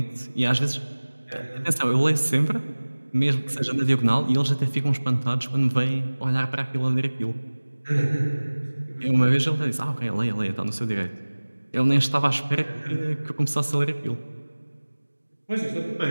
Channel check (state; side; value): inverted; both; correlation -1.00